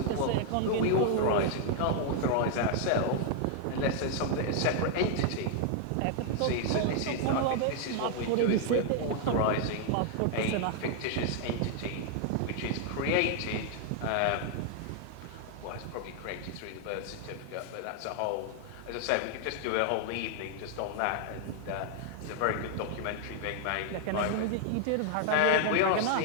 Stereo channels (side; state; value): both; different; correlation 0.00